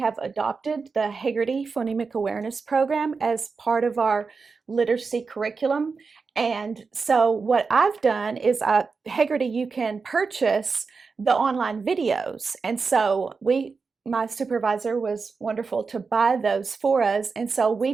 adopted the Hagerty Phonemic Awareness Program as part of our literacy curriculum. And so what I've done is Hagerty, you can purchase the online videos. And so my supervisor was wonderful to buy those for us. And so we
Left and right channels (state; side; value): quieter; left; 4.8 dB